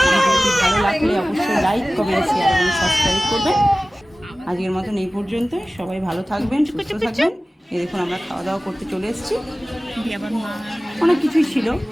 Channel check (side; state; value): both; normal; correlation 0.97